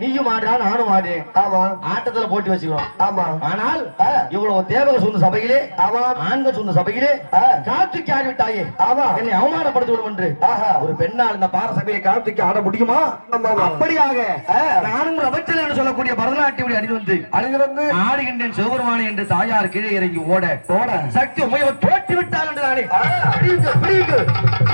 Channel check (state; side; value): inverted; both; correlation -1.00